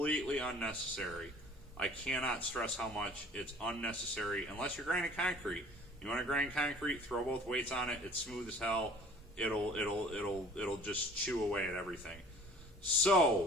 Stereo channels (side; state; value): both; normal; correlation 0.49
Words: unnecessary. I cannot stress how much it's unnecessary unless you're grinding concrete. You want to grind concrete, throw both weights on it. It's smooth as hell. It'll just chew away at everything.